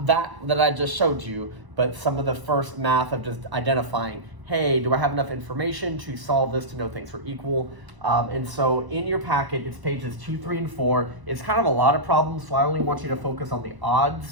that I just showed you, but some of the first math of just identifying, hey, do I have enough information to solve this to know things are equal? And so in your packet, it's pages 2, 3, and 4. It's kind of a lot of problems, so I only want you to focus on the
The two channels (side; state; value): left; late; 1.0 ms